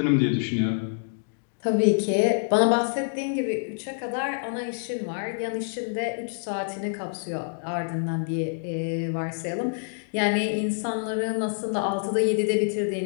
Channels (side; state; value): right; silent; digital silence